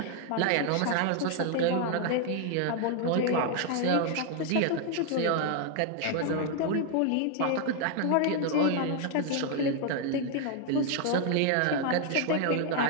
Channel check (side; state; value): both; different; correlation 0.00